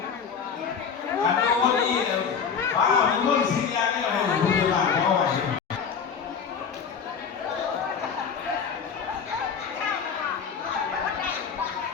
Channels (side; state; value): right; quieter; 6.5 dB